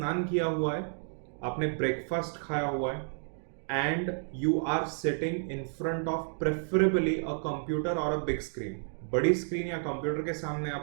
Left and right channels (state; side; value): silent; left; digital silence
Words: किया हुआ है, आपने ब्रेकफास्ट खाया हुआ है, and you are sitting in front of preferably a computer और अ बिग स्क्रीन. बड़ी स्क्रीन या कंप्यूटर के सामने